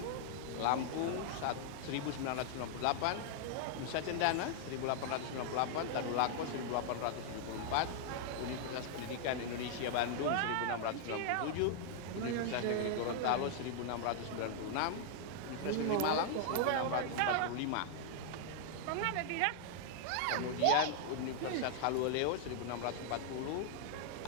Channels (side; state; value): both; different; correlation -0.01